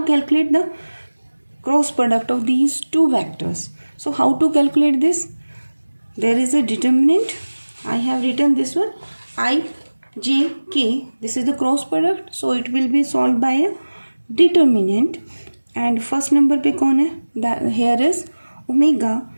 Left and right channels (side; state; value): both; inverted; correlation -1.00